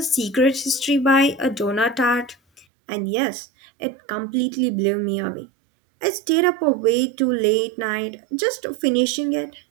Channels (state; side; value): drops out; left; at 2.7 s